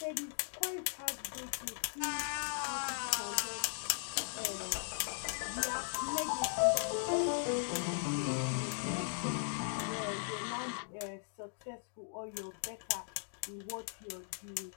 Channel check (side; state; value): right; silent; digital silence